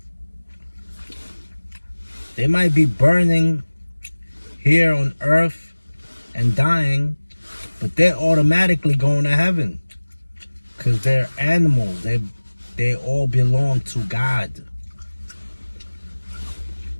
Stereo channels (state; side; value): inverted; both; correlation -1.00